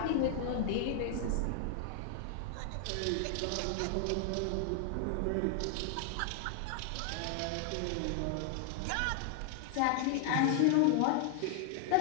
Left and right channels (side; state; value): both; different; correlation 0.00